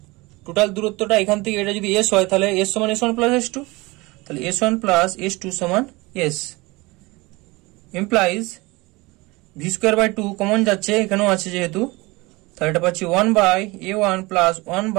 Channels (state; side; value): quieter; left; 23.2 dB